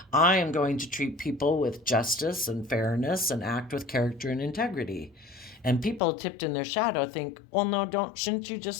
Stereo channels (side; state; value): right; drops out; at 6.0 s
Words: I am going to treat people with justice and fairness and act with character and integrity. And people tipped in their shadow think, well, no, shouldn't you